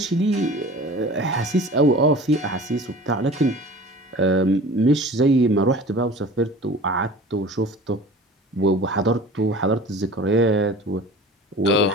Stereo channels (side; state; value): both; normal; correlation 0.41